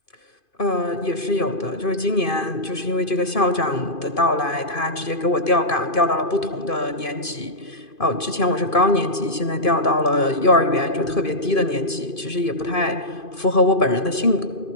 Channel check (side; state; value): right; late; 2.5 ms